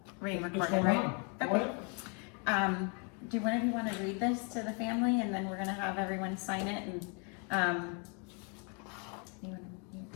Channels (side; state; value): right; quieter; 36.2 dB